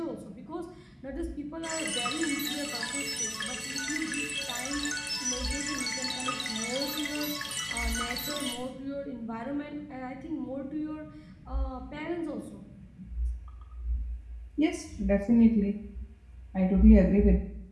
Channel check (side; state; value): both; identical; correlation 1.00